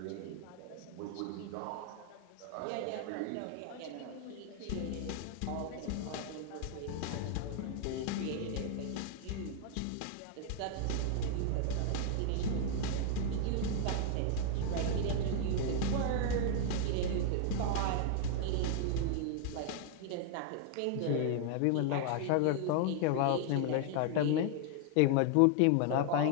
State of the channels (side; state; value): both; different; correlation 0.00